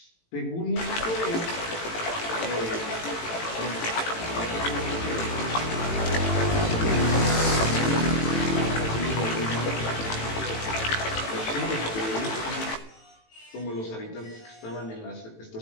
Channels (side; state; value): right; late; 18 ms